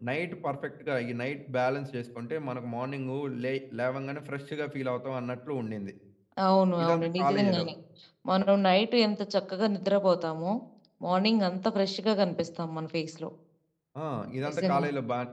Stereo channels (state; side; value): identical; both; correlation 1.00